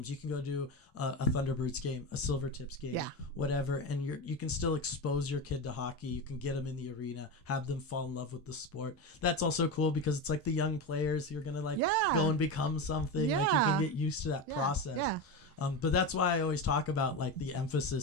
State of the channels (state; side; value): normal; both; correlation 0.19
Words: you can go to a Thunderbirds game, a Silvertips game, whatever. And you can still expose your kid to hockey. You can get them in the arena, have them fall in love with the sport. That's also cool because it's like the young players who are going to go and become something. Yeah. Like you can get used to that process. Yeah. But that's why I always talk about like the